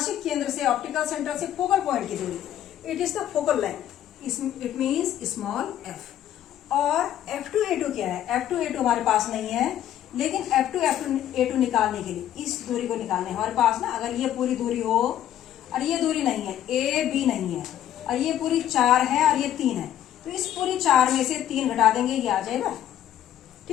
केंद्र से ऑप्टिकल सेंटर से फोकल पॉइंट की दूरी, it is the focal length, it means small f। और F2A2 क्या है, F2A2 हमारे पास नहीं है, लेकिन F2A2 निकालने के लिए इस दूरी को निकालने हमारे पास ना, अगर ये पूरी दूरी हो और ये दूरी नहीं है, AB नहीं है, और ये पूरी 4 है और ये 3 है, तो इस पूरी 4 में से 3 घटा देंगे, ये आ जाएगा।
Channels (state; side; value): quieter; right; 11.4 dB